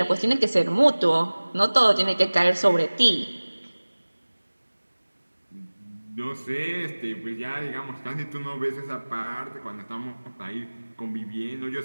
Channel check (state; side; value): inverted; both; correlation -1.00